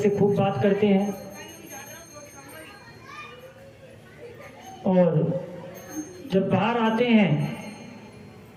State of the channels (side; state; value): both; identical; correlation 1.00